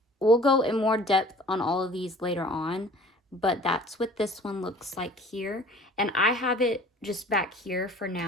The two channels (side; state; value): both; normal; correlation 0.47